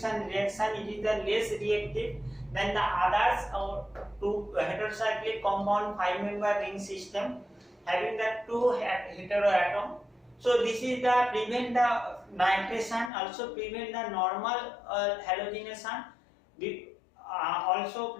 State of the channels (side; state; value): right; drops out; at 13.1 s